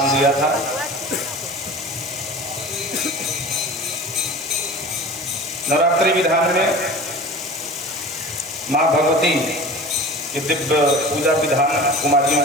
दिया था। नवरात्रि विधान में माँ भगवती के दिव्य पूजा विधान, कुमारियों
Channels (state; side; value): normal; both; correlation 0.37